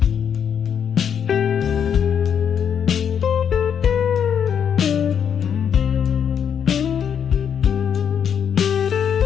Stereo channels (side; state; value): right; quieter; 8.0 dB